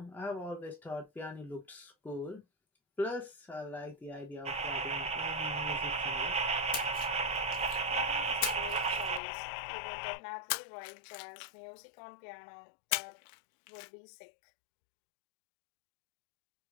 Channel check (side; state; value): right; drops out; at 9.2 s